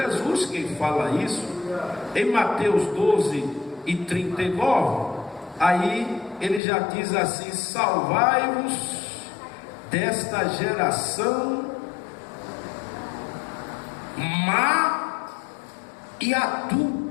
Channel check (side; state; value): right; drops out; at 6.6 s